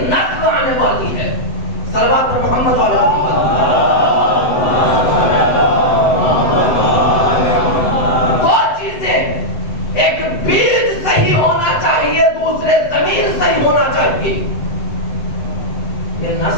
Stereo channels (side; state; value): right; late; 7.9 ms